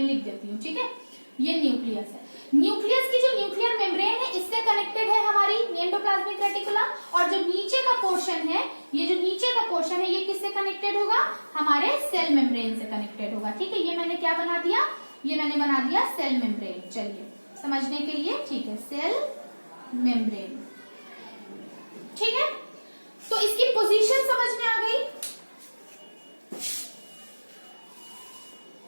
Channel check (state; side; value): inverted; both; correlation -1.00